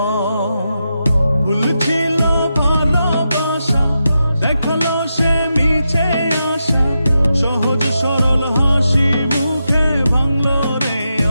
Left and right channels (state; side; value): inverted; both; correlation -0.87